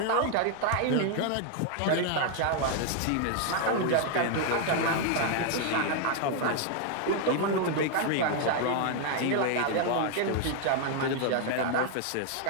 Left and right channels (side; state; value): both; different; correlation 0.00